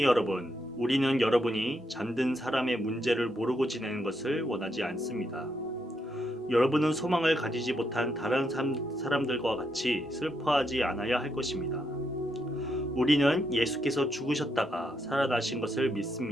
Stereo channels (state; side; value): normal; both; correlation 0.79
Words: 여러분, 우리는 여러분이 잠든 사람의 문제를 모르고 지내는 것을 원하지 않습니다. 여러분은 소망을 가지지 못한 다른 사람들과 같이 슬퍼하지 않아야 할 것입니다. 우리는 예수께서 죽으셨다가 살아나신 것을